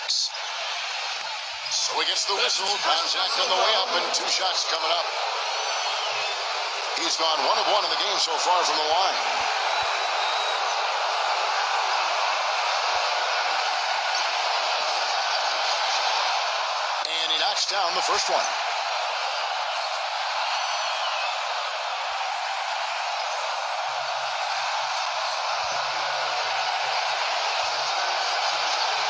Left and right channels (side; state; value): both; identical; correlation 1.00